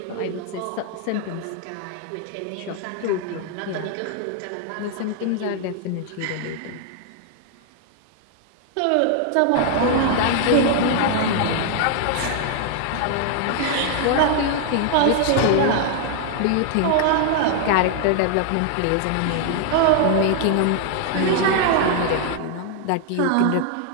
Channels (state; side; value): different; both; correlation 0.00